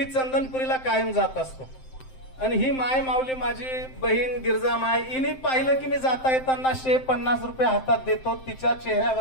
चंदनपुरीला कायम जात असतो आणि ही माय माऊली माझी बहीण गिरजा माय हिने पाहिलं की मी जाता येताना 150 रुपये हातात देतो. तिच्या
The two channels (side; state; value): right; late; 7.7 ms